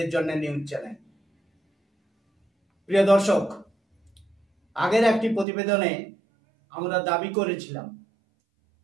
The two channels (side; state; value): left; drops out; at 5.5 s